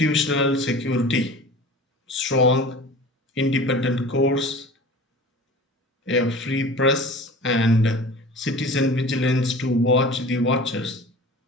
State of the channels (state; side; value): normal; both; correlation 0.40